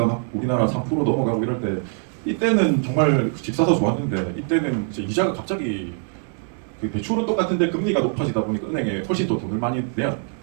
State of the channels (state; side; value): silent; left; 55 dB below the other